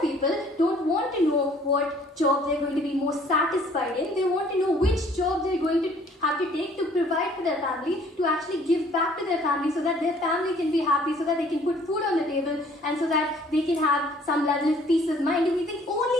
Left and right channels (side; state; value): both; normal; correlation 0.57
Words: people don't want to know what job they're going to be most satisfied in. They want to know which job they're going to have to take to provide for their family, to actually give back to their family so that their family can be happy, so that they can put food on the table, and so that they can have some level of peace of mind. And we think